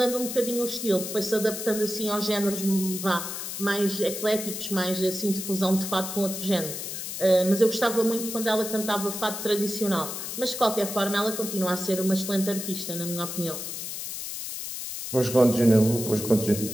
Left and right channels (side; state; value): left; noise; hiss, 6 dB below the sound